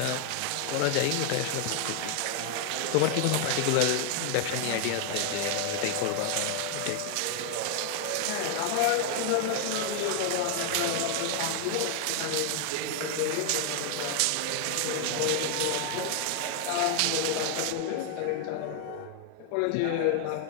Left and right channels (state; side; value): different; both; correlation 0.00